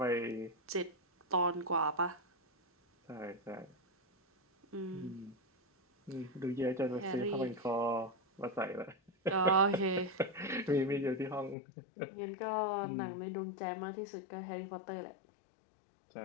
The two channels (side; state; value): right; drops out; at 11.6 s